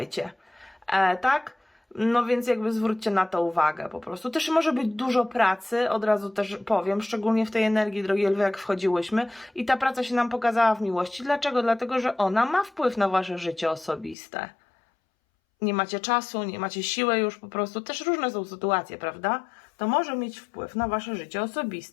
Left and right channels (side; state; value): right; drops out; at 14.2 s